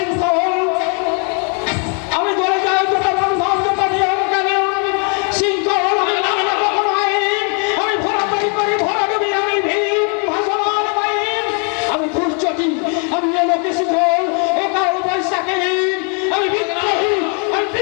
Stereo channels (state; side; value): quieter; right; 39.4 dB